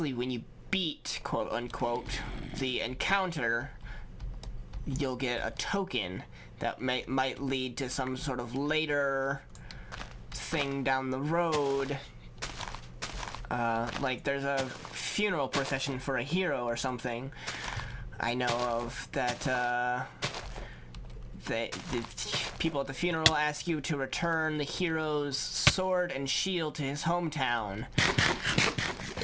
beat, quote unquote, the encounter, you'll get a token that might lead to some sort of later thing down the road. Like there's a funeral procession for a hero or something I know of that the people at the funeral ask you to return the hero's sword and shield to his hometown,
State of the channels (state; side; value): identical; both; correlation 1.00